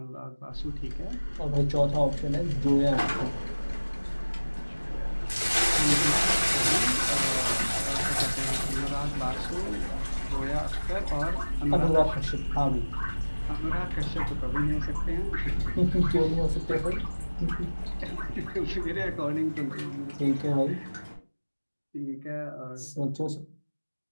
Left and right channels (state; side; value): inverted; both; correlation -1.00